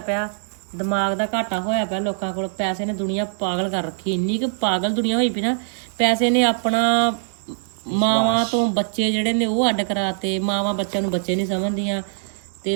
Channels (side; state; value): left; silent; digital silence